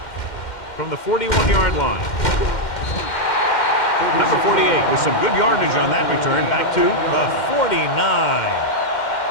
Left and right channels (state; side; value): late; right; 2.1 ms